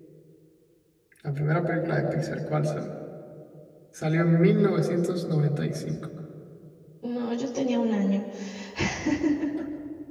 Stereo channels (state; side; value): identical; both; correlation 1.00